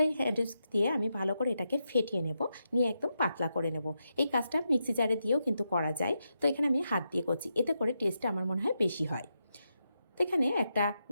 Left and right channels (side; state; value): both; inverted; correlation -0.85